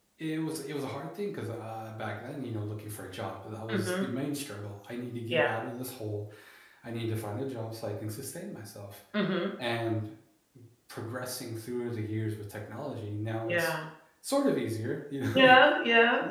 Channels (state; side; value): identical; both; correlation 1.00